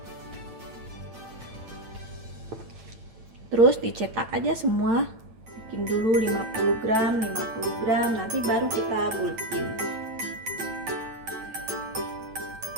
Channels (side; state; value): left; late; 9.0 ms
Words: Terus dicetak aja semua, bikin dulu 50 gram, 50 gram, nanti baru kita bulkin.